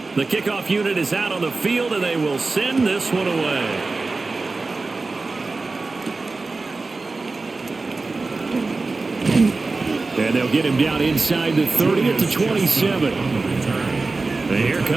The kickoff unit is out on the field, and they will send this one away. And they'll get him down inside the 30 at the 27. And here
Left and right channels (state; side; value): quieter; left; 3.7 dB